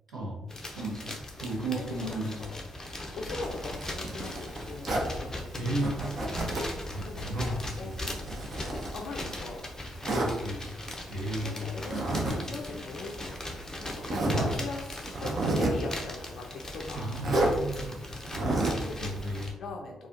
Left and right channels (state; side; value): normal; both; correlation 0.74